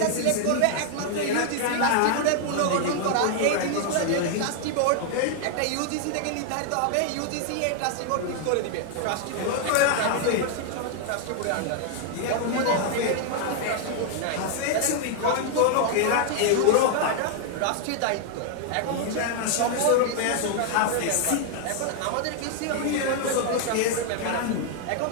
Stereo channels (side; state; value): both; different; correlation 0.00